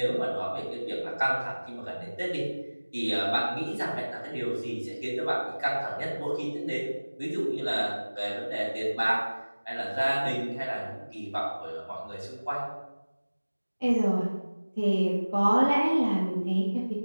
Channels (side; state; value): both; inverted; correlation -1.00